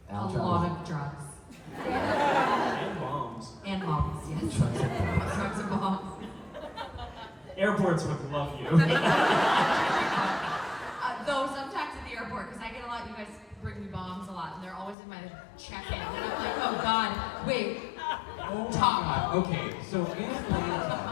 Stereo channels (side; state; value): right; drops out; at 15.0 s